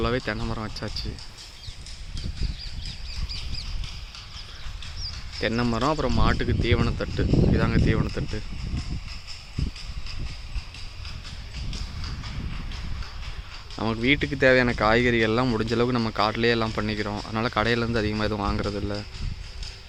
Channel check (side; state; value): both; identical; correlation 1.00